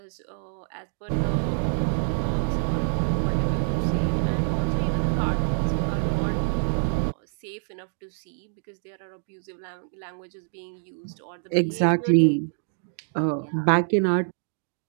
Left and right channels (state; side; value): silent; left; digital silence